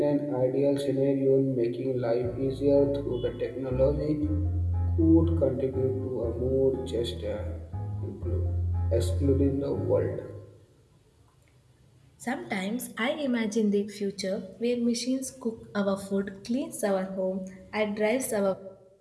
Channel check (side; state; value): both; identical; correlation 1.00